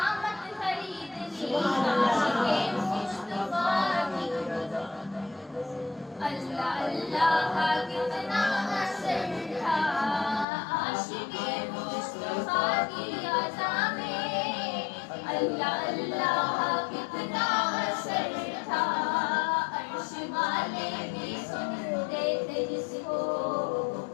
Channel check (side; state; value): right; drops out; at 10.5 s